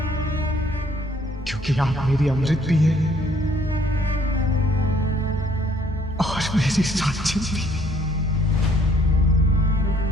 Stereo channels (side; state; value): both; normal; correlation 0.63